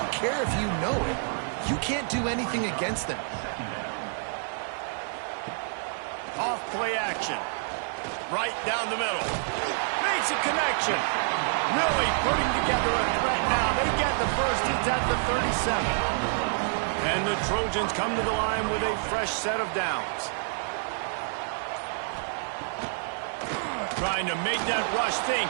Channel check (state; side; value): silent; left; 59 dB below the other